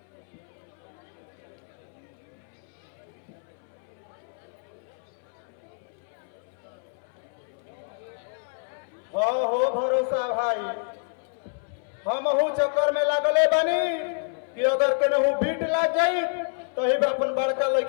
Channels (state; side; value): silent; right; 59 dB below the other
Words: हो भरोसा भाई हम चक्कर में लागले बानी कि अगर केनहू बीट लाग जाई तो ही अपन बड़का